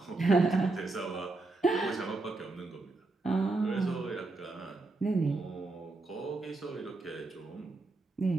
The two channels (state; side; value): quieter; left; 3.3 dB